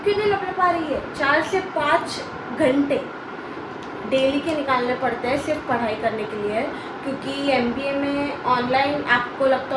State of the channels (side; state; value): both; identical; correlation 1.00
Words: क्यों नहीं लपट पा रही है, 4 से 5 घंटे डेली के निकालने पड़ते हैं सिर्फ पढ़ाई करने के लिए। क्योंकि MBA में ऑनलाइन, आपको लगता